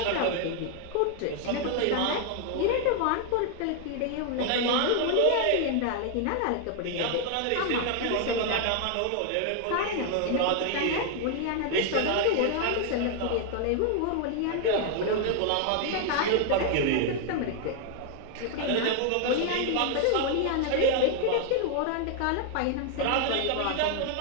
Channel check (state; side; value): different; both; correlation 0.00